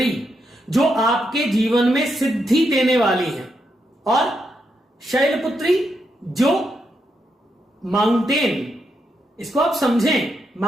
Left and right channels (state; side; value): normal; both; correlation 0.82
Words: जो आपके जीवन में सिद्धि देने वाली है। और शैलपुत्री जो माउंटेन, इसको आप समझें,